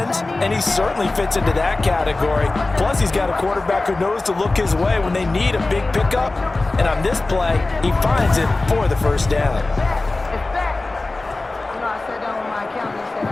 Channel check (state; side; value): quieter; right; 3.2 dB